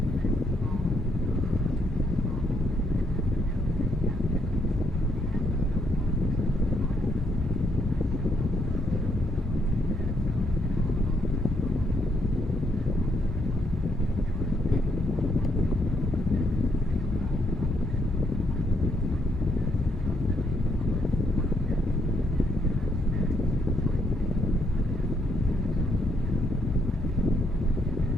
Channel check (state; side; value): normal; both; correlation 0.74